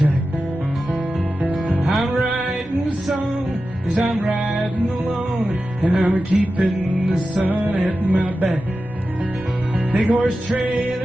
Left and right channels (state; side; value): normal; both; correlation 0.93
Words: I'm writing a song as I'm riding along, and I'm keeping the sun at my back. Big horse